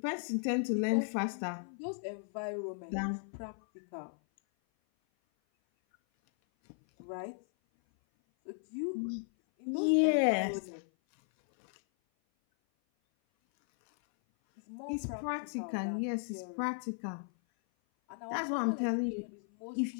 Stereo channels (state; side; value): silent; right; 54 dB below the other